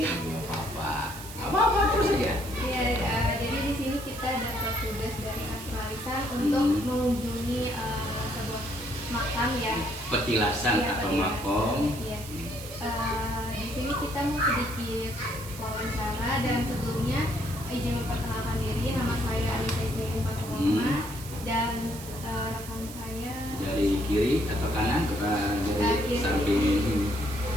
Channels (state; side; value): noise; right; hiss, 14 dB below the sound